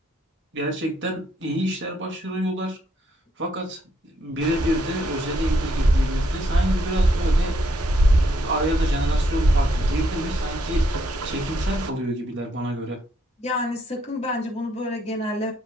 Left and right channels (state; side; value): normal; both; correlation 0.74